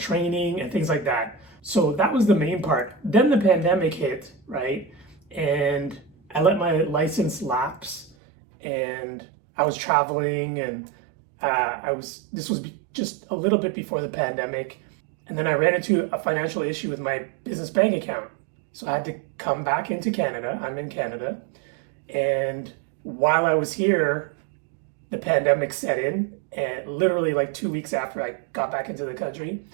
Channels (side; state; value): left; drops out; at 8.2 s